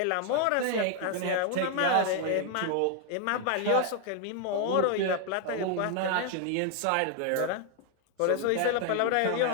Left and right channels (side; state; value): both; different; correlation 0.00